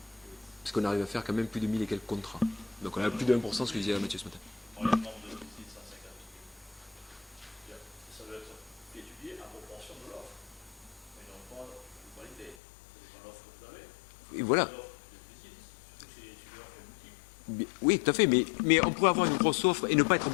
parce qu'on arrive à faire quand même plus de 1000 et quelques contrats. Donc on a plus de 1%, ce que je disais à Mathieu ce matin. Ça doit être étudié en proportion de l'offre, mais non pas de qualité. C'est l'offre que vous avez. Et voilà. Oui, tout à fait, mais on pourrait avoir une grosse offre et ne pas être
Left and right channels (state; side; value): drops out; right; at 12.6 s